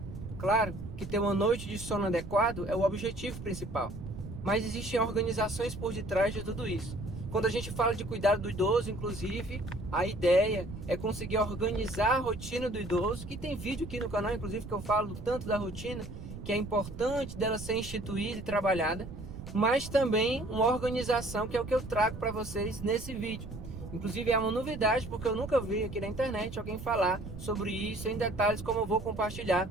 Claro que ter uma noite de sono adequado é o objetivo principal, mas existem organizações por detrás de tudo isso. Quando a gente fala de cuidado do idoso, inclusive, a ideia é conseguir organizar a rotina do idoso, que tem vídeo aqui no canal, inclusive, que eu falo tanto da rotina, que é importante dela ser instituída e trabalhada, mas também uma organização que é o que eu trago para vocês nesse vídeo. Inclusive é uma novidade, porque eu nunca vi aqui na internet alguém falar sobre isso em detalhes, como eu vou compartilhar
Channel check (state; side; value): noise; right; rumble, 11 dB below the sound